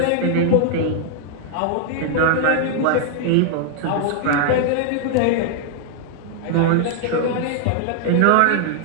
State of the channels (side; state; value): both; different; correlation -0.01